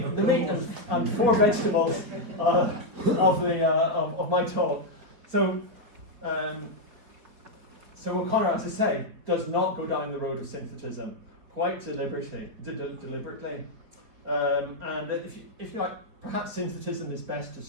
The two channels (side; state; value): left; late; 4.8 ms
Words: meat and four vegetables of my talk. So O'Conor, as I say, does not go down the road of synthetism quite deliberately. And if you like, perhaps synthetism is best